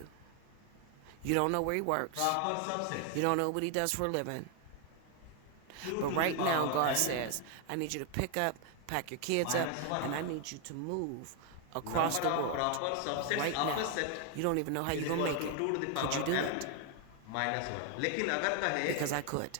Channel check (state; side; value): different; both; correlation 0.01